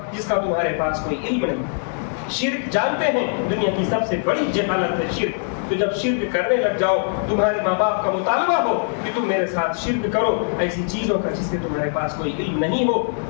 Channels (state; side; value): silent; right; 64 dB below the other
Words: تمہارے پاس کوئی علم نہیں۔ شرک جانتے ہیں دنیا کی سب سے بڑی جہالت ہے شرک، تو جب شرک کرنے لگ جاؤ، تمہارے ماں باپ کا مطالبہ ہو کہ تم میرے ساتھ شرک کرو ایسی چیزوں کا جس کے تمہارے پاس کوئی علم نہیں ہو،